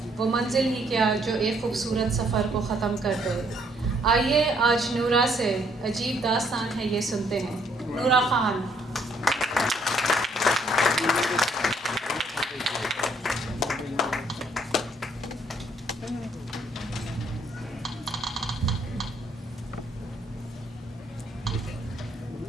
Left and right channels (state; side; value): normal; both; correlation 0.67